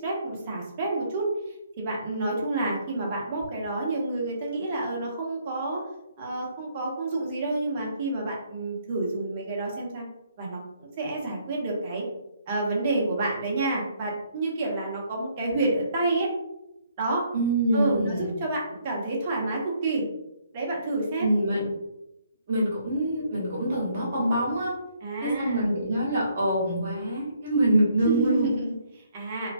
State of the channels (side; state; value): both; inverted; correlation -0.68